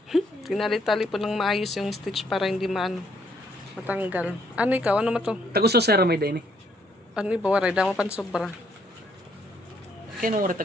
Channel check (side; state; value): both; normal; correlation 0.69